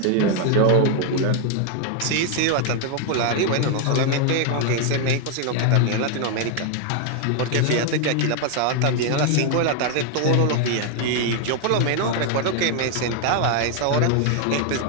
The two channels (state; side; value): different; both; correlation 0.00